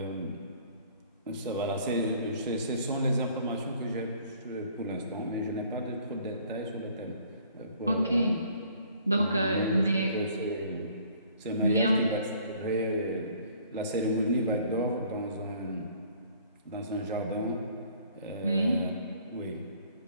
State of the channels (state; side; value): inverted; both; correlation -0.57